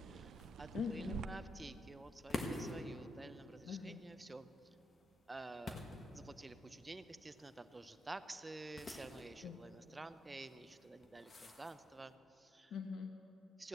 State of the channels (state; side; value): normal; both; correlation 0.81